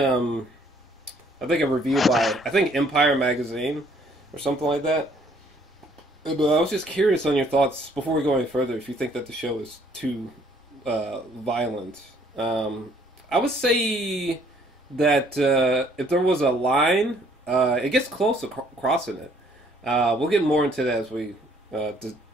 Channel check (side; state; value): both; normal; correlation 0.62